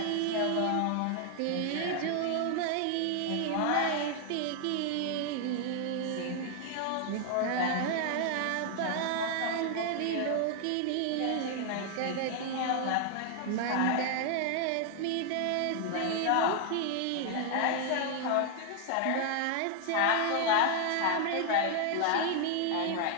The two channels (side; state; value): both; different; correlation 0.00